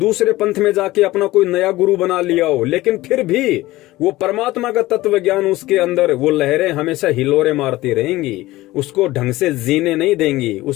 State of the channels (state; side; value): quieter; right; 17.9 dB